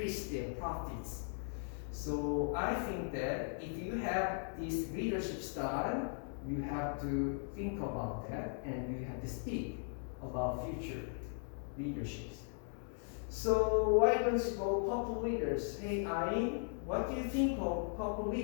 their profits. So I think that if you have this leadership style, you have to think about that and you have to speak about future leaderships. So why don't you go purple leaders? Hey Ayn, what do you think of purple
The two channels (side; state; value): right; silent; 52 dB below the other